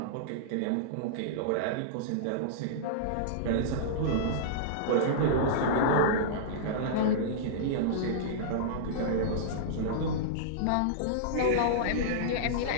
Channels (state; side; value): different; both; correlation -0.03